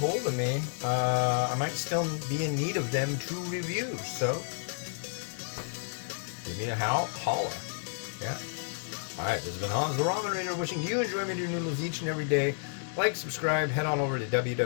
of me. I might still be in need of them to review. So, give me a holla. Yeah. All right, this has been Hans the Ramen Raider wishing you enjoyment of your noodles each and every day. Like, subscribe, head on over to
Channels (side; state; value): right; silent; digital silence